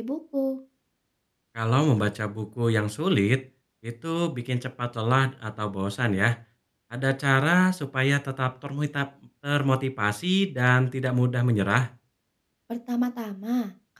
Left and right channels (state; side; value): identical; both; correlation 1.00